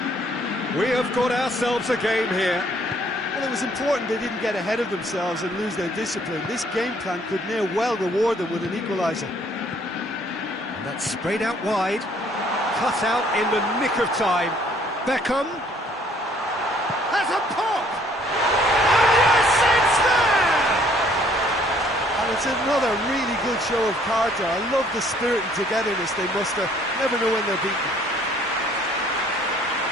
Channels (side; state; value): both; normal; correlation 0.61